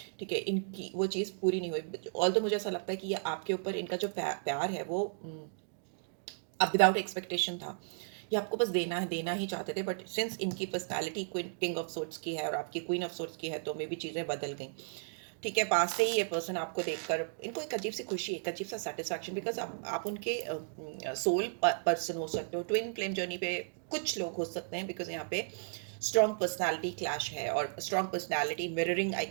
ठीक है, इनकी वो चीज़ पूरी नहीं हुई। ऑल तो मुझे ऐसा लगता है कि ये आपके ऊपर इनका जो प्यार है वो अब विदाउट एक्सपेक्टेशन था। ये आपको बस देना ही चाहते थे, बट सिंस इनकी personality queen king of sorts की है और आपकी क्वीन ऑफ सोर्ट्स की है, तो मे भी चीज़ें बदल गई। ठीक है, पास से ही ये पर्सन आपको देखकर इनको एक अजीब सी खुशी, एक अजीब सा सेटिस्फैक्शन, बिकॉज आप उनके सोल पर्सन हो सकते हो। ट्विन फ्लेम जर्नी पे कुछ लोग हो सकते हैं, बिकॉज यहाँ पे स्ट्रॉन्ग पर्सनालिटी क्लैश है और strong personality mirroring I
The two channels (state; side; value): silent; left; digital silence